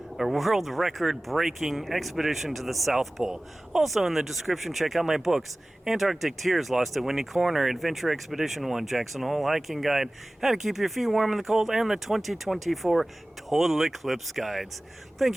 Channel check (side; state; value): both; normal; correlation 0.98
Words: record breaking expedition to the South Pole. Also in the description, check out my books, Antarctic Tears, Lost at Windy Corner, Adventure Expedition 1, Jackson Hole Hiking Guide, How to Keep Your Feet Warm in the Cold, and the 2024 Total Eclipse Guides. Thank